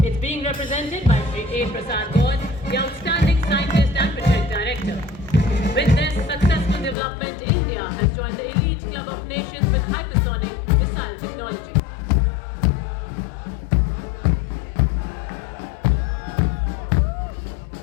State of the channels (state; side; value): drops out; right; at 7.0 s